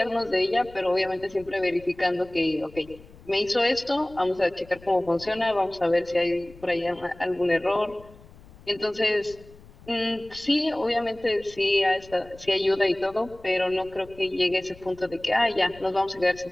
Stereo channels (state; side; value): noise; left; rumble, 22 dB below the sound